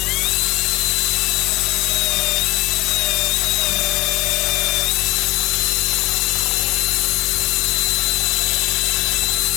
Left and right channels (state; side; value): quieter; right; 21.1 dB